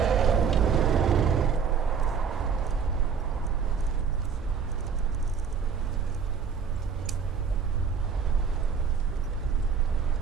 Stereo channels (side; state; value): left; quieter; 6.4 dB